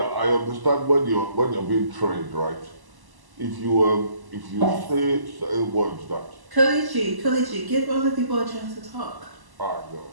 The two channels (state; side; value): late; left; 1.0 ms